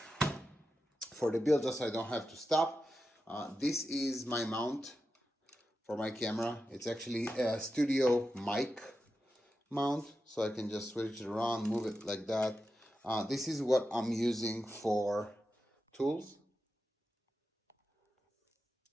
the build, just so I don't have to stop. This is my mount for my camera. It's actually a studio mic mount, so I can just switch it around, move it like that. This is what I'm using for tools.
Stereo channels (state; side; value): normal; both; correlation 0.90